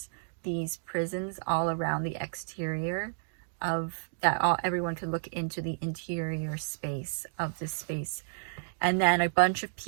these prisons all around the exterior of that. Everyone could look into the interior space of this space. And then a bunch of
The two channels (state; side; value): silent; left; digital silence